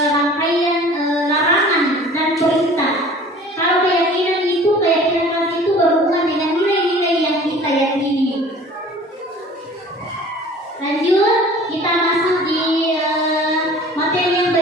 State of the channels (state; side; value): normal; both; correlation 0.46